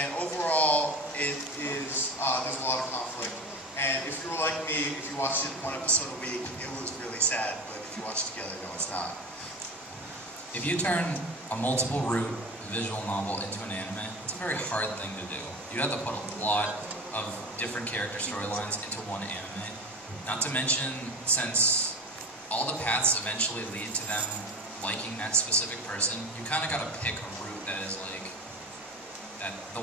overall it is there's a lot of conflict, and if you were like me, if you watched it 1 episode a week, it was really sad, but if you watch it together, no, it's not. If you turn a multiple route visual novel into an anime, it's a very hard thing to do. You have to put a lot of different character storylines into one anime, not to mention since all the paths eventually lead to them liking that specific person, you kind of got to pick a route that is the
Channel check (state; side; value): normal; both; correlation 0.31